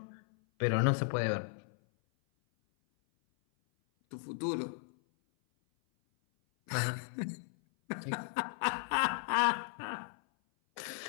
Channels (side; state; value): right; silent; 54 dB below the other